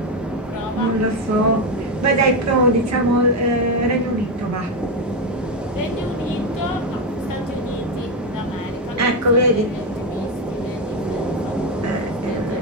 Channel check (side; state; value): both; normal; correlation 0.10